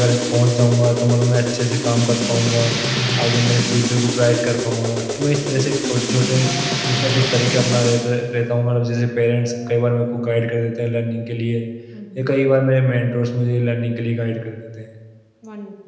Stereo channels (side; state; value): both; identical; correlation 1.00